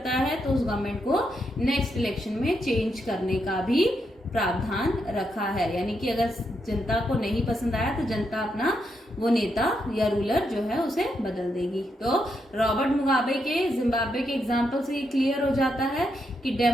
है तो उस गवर्नमेंट को नेक्स्ट इलेक्शन में चेंज करने का भी प्रावधान रखा है। यानी कि अगर जनता को नहीं पसंद आया तो जनता अपना वो नेता या रूलर जो है उसे बदल देगी। तो रॉबर्ट मुगाबे के जिम्बाब्वे के एग्जाम्पल से ये क्लियर हो जाता है कि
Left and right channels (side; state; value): both; normal; correlation 0.81